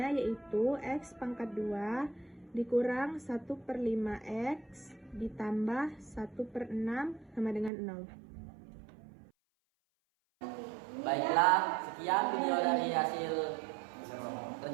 yaitu x pangkat 2 dikurang 1 per 5x ditambah 1 per 6 sama dengan 0. Baiklah, sekian video dari hasil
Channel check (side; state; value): left; drops out; at 7.7 s